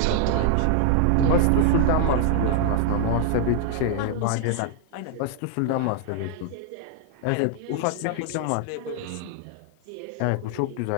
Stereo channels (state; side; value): different; both; correlation -0.01